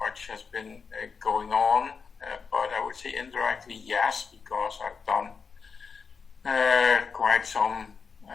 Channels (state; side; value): quieter; right; 5.5 dB